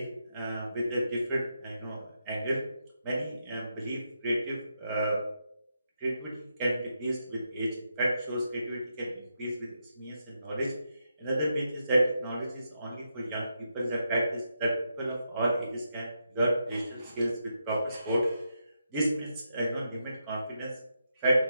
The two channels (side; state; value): both; inverted; correlation -0.83